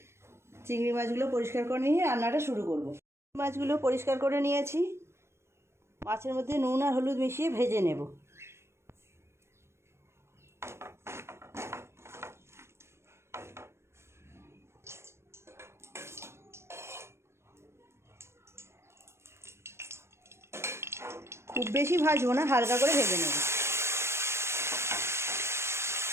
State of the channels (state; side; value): late; left; 0.13 ms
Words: চিংড়ি মাছগুলো পরিষ্কার করে নিয়ে রান্নাটা শুরু করব। মাছগুলো পরিষ্কার করে নিয়েছি, মাছের মধ্যে নুন আর হলুদ মিশিয়ে ভেজে নেব। খুব বেশি ভাজবো না, হালকা করে ভেজে নেব।